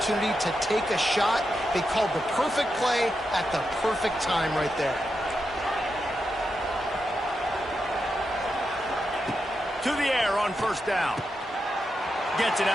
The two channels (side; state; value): both; normal; correlation 0.86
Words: to take a shot. They called the perfect play at the perfect time right there. To the air on 1st down. Gets it